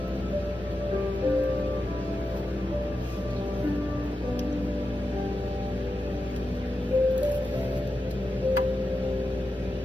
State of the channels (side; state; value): both; normal; correlation 0.90